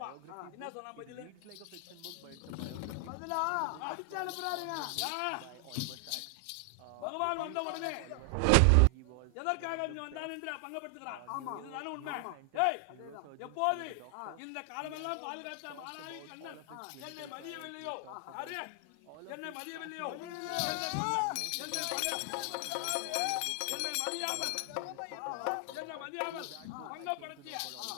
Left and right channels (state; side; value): different; both; correlation 0.00